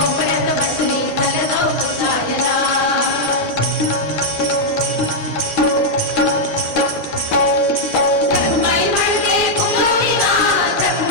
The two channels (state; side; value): normal; both; correlation -0.04